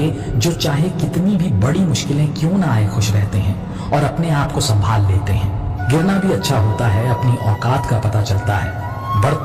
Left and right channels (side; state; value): both; identical; correlation 1.00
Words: जो चाहे कितनी भी बड़ी मुश्किलें क्यों ना आए खुश रहते हैं और अपने आप को संभाल लेते हैं। गिरना भी अच्छा होता है, अपनी औकात का पता चलता है।